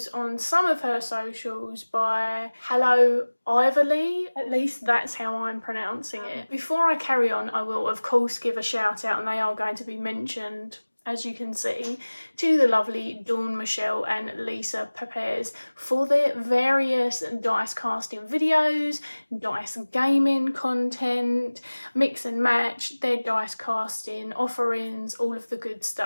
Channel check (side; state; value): both; inverted; correlation -1.00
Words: on some of her socials by 𝗗𝗶𝗰𝗲, at least that's how I'm pronouncing it. Before I carry on, I will of course give a shout out, and they are going to be mentioned, as you can see, to the lovely Dawn Michelle and Lisa Pepez for their various dice casting videos, dice gaming content, mix and match, their dice casting offerings, all of the good